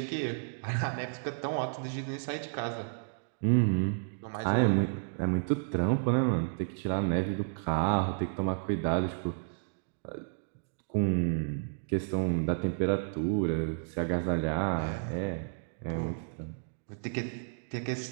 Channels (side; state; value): left; silent; digital silence